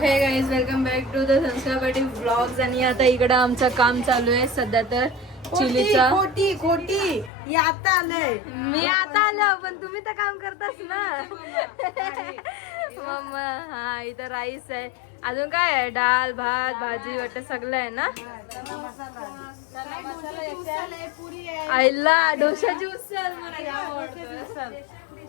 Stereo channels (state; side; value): drops out; right; at 7.3 s